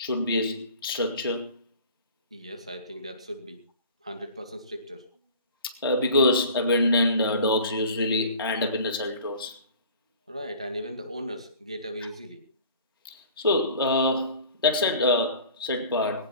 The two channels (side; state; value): both; inverted; correlation -0.45